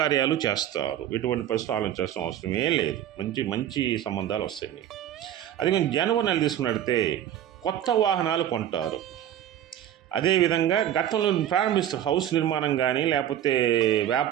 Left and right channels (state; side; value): quieter; left; 11.1 dB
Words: చేస్తారు. ఎటువంటి పరిస్థితులు ఆలోచించాల్సిన అవసరమే లేదు, మంచి మంచి సంబంధాలు వస్తాయి మీకు. అదేవిధంగా జనవరి నెల తీసుకున్నట్లయితే కొత్త వాహనాలు కొంటారు. అదేవిధంగా గతంలో ప్రారంభిస్తారు, హౌస్ నిర్మాణం కానీ లేకపోతే